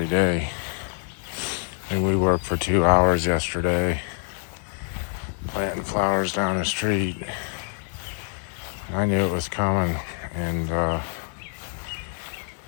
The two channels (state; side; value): silent; right; 61 dB below the other